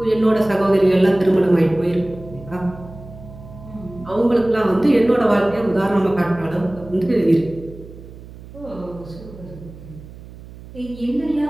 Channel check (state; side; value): noise; right; hum, 17 dB below the sound